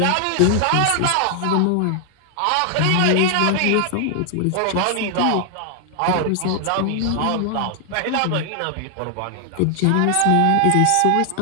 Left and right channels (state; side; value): different; both; correlation 0.00